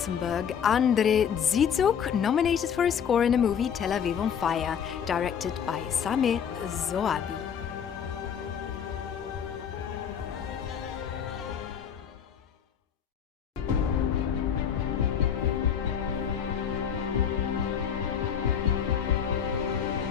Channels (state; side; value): quieter; right; 7.9 dB